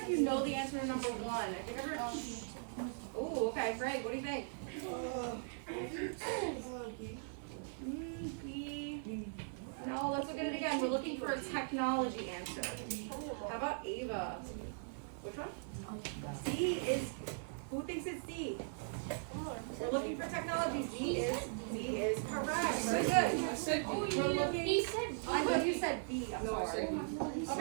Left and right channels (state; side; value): silent; left; 51 dB below the other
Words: if you know the answer to number 1. I think everyone. Oh, okay, Frank, what do you think? B. No, let's look at it again. We're looking for a technology answer. How about Ava? Which one? C is. Who thinks it's D? We're looking for technology. D is correct. Very good. We're looking. He said I thought you said B. I'm sorry.